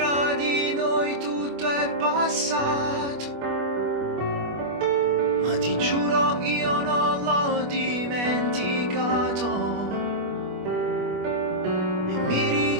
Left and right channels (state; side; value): late; left; 25 ms